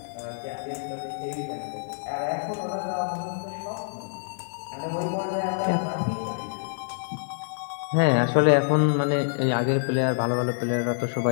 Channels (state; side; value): silent; right; digital silence